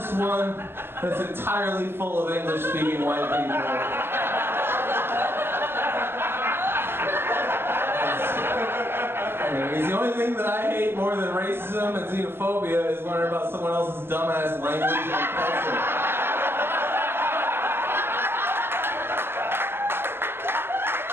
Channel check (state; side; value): late; left; 0.11 ms